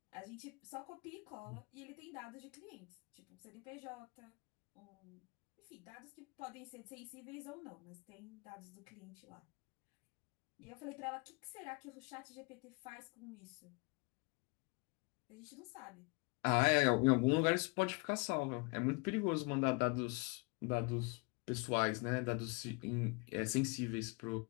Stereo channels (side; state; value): right; quieter; 30.3 dB